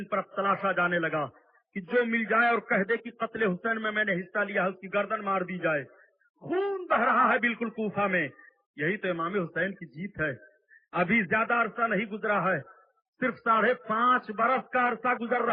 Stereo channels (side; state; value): both; normal; correlation 0.97